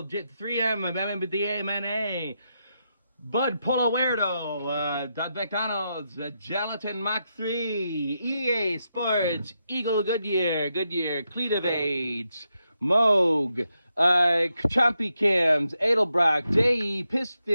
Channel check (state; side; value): inverted; both; correlation -0.84